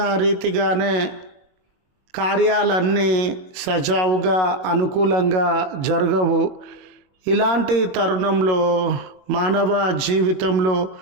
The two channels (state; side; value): late; left; 21 ms